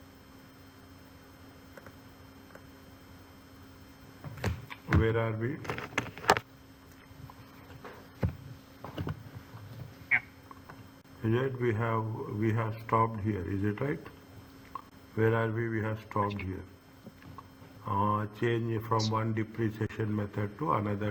Where are we? Is it we have stopped here? Is it right? Where are we? We have stopped here. Change from one depreciation method to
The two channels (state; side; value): identical; both; correlation 1.00